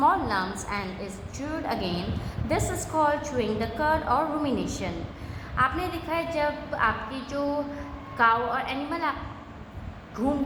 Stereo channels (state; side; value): identical; both; correlation 1.00